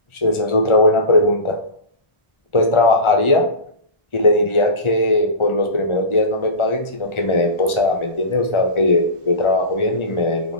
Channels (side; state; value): right; late; 1.4 ms